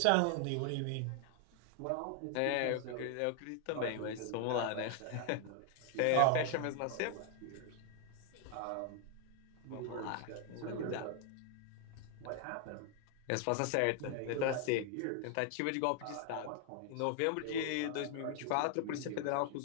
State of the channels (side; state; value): both; different; correlation 0.00